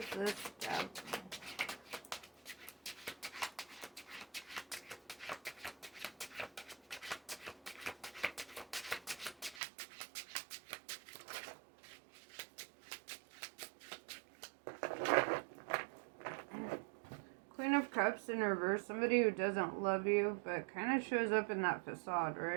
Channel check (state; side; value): drops out; left; at 9.6 s